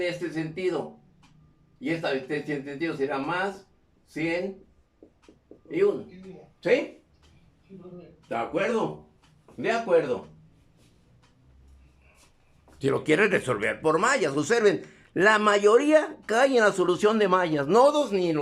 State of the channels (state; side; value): identical; both; correlation 1.00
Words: este sentido. Y este sentido será más 100 y 1. ¿Sí? Sí, profe. ¿De acuerdo? De acuerdo. Si lo quieren resolver por mallas, observen, la mayoría cae en la solución de mallas. Nodos ni